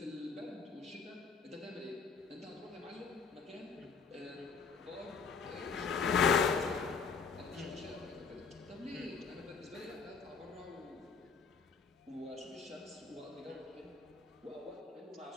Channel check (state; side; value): quieter; right; 5.3 dB